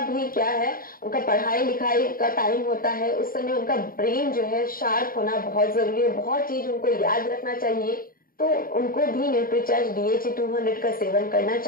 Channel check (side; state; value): right; late; 0.42 ms